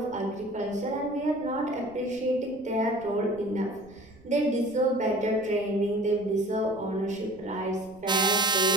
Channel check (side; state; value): right; noise; rumble, 24 dB below the sound